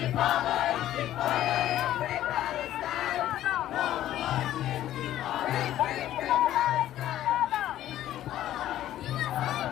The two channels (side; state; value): right; quieter; 12.9 dB